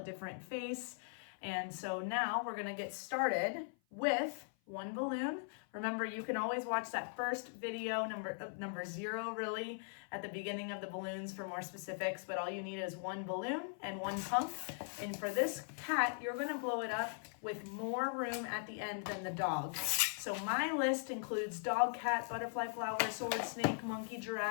face. And so now we're gonna get started with one balloon. Remember, you can always watch that first video, number 0 really, at the beginning of the balloons for more specifics, but all you need is one balloon and one pump. And for this cat, you're gonna blow it up with more room at the end than the dog. So my list includes dog, cat, butterfly, flower, sword, snake, monkey,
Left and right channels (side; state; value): right; silent; 51 dB below the other